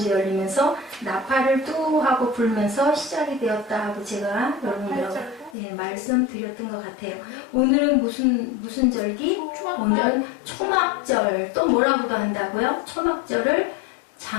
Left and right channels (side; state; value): right; drops out; at 5.6 s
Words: 열리면서 나팔을 뚜 하고 불면서 시작이 되었다 하고 제가 여러분들하고 말씀드렸던 것 같아요. 오늘은 무슨 절기? 오늘은 초막절. 또 뭐라고도 한다고요? 초막절을